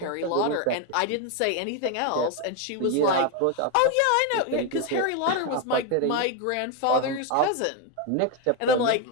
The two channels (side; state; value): both; different; correlation 0.02